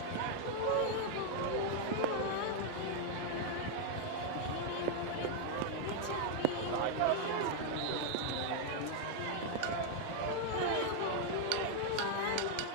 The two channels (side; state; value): both; different; correlation 0.00